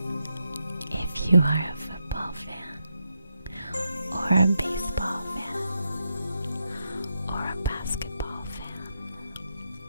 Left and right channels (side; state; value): both; inverted; correlation -0.84